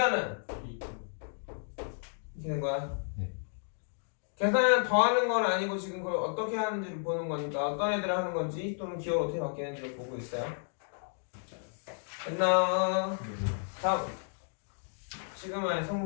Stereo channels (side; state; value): right; silent; digital silence